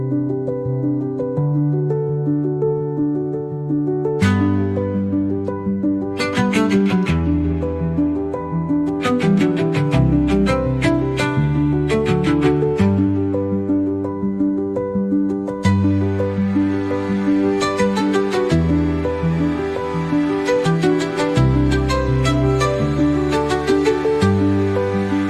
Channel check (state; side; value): identical; both; correlation 1.00